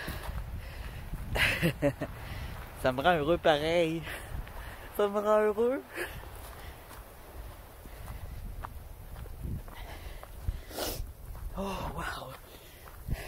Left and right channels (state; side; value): identical; both; correlation 1.00